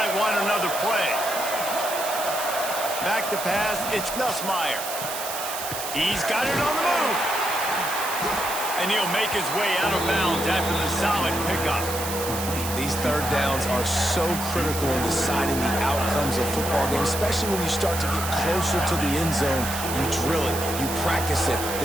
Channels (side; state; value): right; noise; hiss, 6 dB below the sound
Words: want another play. Back to pass, it's Nussmeier. He's got it on the move. And he'll make his way out of bounds after the solid pickup. These third downs are so critical in deciding the outcomes of football games, especially when you start to get closer to the end zone. You drill it, you practice it.